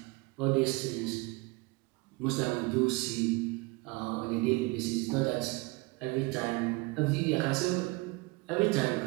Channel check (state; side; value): quieter; left; 25.3 dB